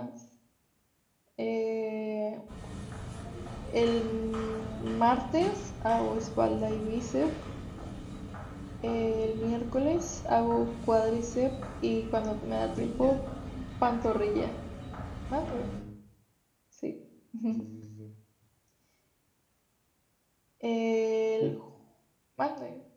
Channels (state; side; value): identical; both; correlation 1.00